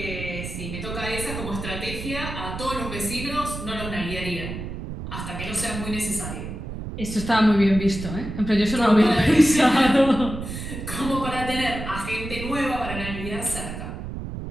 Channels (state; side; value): noise; right; rumble, 7 dB below the sound